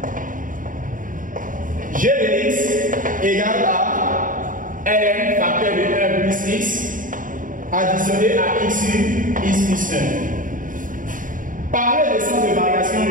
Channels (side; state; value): left; late; 0.39 ms